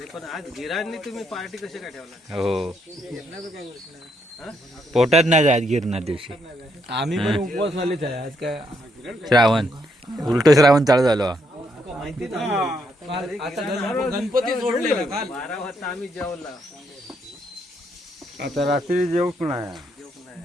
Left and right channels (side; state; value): both; normal; correlation 0.76